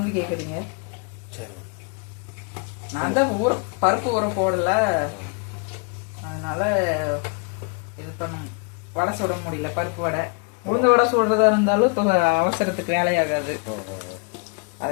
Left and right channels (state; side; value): quieter; right; 35.0 dB